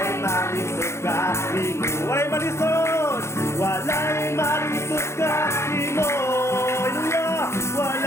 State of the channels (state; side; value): late; right; 0.13 ms